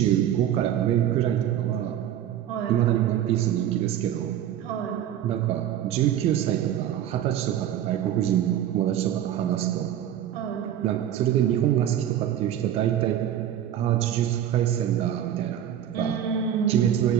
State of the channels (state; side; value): quieter; left; 10.7 dB